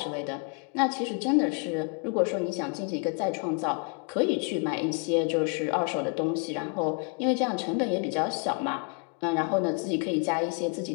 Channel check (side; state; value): right; quieter; 35.7 dB